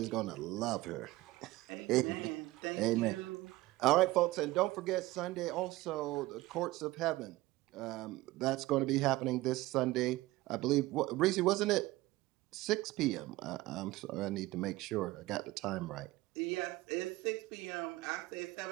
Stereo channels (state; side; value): quieter; left; 18.8 dB